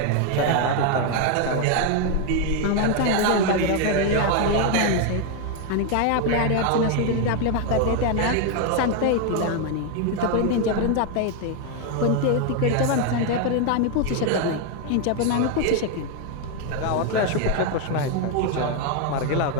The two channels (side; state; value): both; different; correlation 0.01